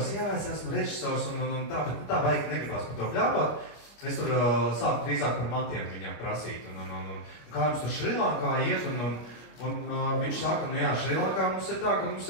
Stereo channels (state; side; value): late; right; 25 ms